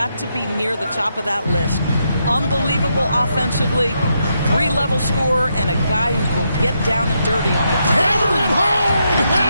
to be near the top of that list. Unbelievable offensively, 3-level scorer, and a guy who will get down and dirty on the table. Hammer it home!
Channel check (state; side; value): inverted; both; correlation -0.81